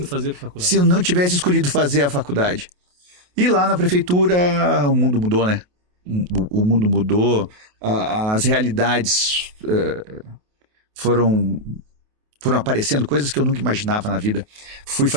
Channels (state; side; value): late; left; 28 ms